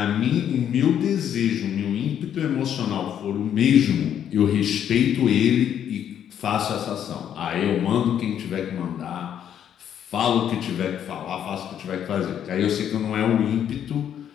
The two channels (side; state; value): right; quieter; 9.6 dB